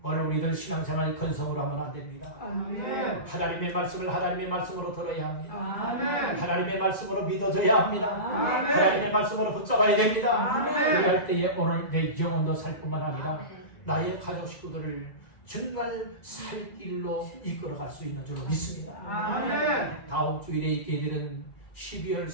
오늘 우리들 신앙생활 건성으로 하면 안 됩니다. 하나님의 말씀을 하나님의 말씀으로 들어야 합니다. 하나님의 말씀으로 믿어줘야 합니다. 하나님의 말씀으로 붙잡아야 됩니다. 그럴 때에 오늘 내 영혼도 살 뿐만 아니라 나의 가족 식구들을 정말 살 길로 이끌어갈 수 있는 줄로 믿습니다. 다음 주일에 있게 되는 12월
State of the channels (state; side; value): late; right; 2.0 ms